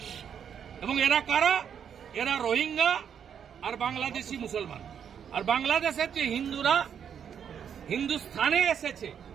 এবং এরা কারা? এরা রোহিঙ্গা আর বাংলাদেশি মুসলমান। আর বাংলাদেশের যে হিন্দুরা হিন্দুস্থানে এসেছে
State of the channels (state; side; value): quieter; left; 8.1 dB